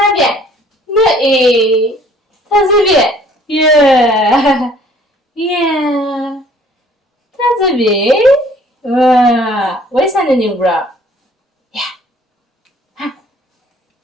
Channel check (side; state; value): both; normal; correlation 0.56